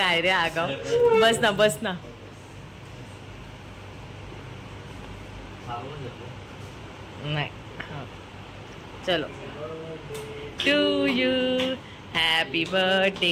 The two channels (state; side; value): identical; both; correlation 1.00